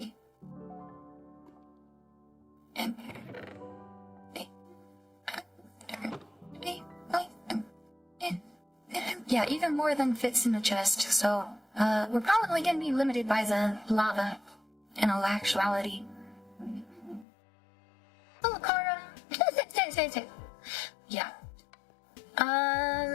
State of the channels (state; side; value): drops out; right; at 17.2 s